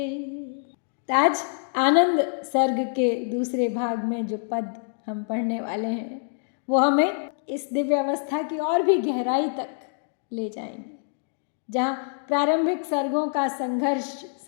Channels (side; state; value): right; silent; digital silence